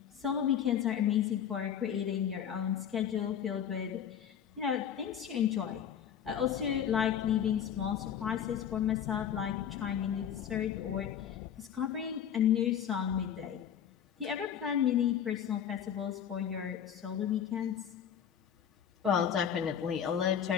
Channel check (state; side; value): quieter; right; 9.0 dB